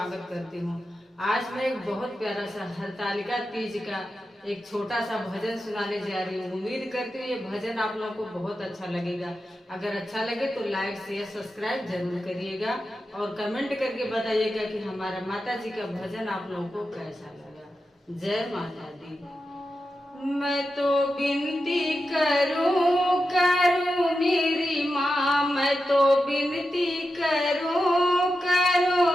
करती हूँ। आज मैं एक बहुत प्यारा सा हरतालिका तीज का एक छोटा सा भजन सुनाने जा रही हूँ। उम्मीद करती हूँ ये भजन आप लोगों को बहुत अच्छा लगेगा। अगर अच्छा लगे तो लाइक शेयर सब्सक्राइब जरूर करिएगा और कमेंट करके बताइएगा कि हमारा माता जी का भजन आप लोगों को कैसा लगा। जय माता दी। मैं तो विनती करूं मेरी माँ, मैं तो विनती करूं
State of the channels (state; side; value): normal; both; correlation 0.90